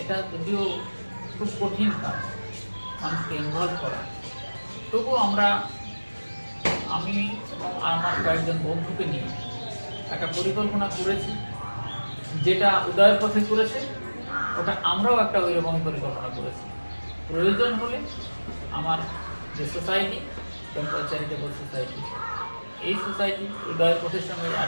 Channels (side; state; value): both; inverted; correlation -1.00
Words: এটা যদিও খুব কঠিন কাজ মানুষকে ইনভলভ করা, তবুও আমি এবং আমার কয়েকজন বন্ধুকে নিয়ে একটা পরিকল্পনা করেছি, যেটা উদয়ের পথে করেছে ওটা আমরাও একটা ওইরকমই পরিকল্পনা করেছি। প্রয়োজন হলে আমার যে সোসাইটি, টেম্পল চ্যারিটেবল সোসাইটি, এই সোসাইটি উদয়ের পথের সঙ্গে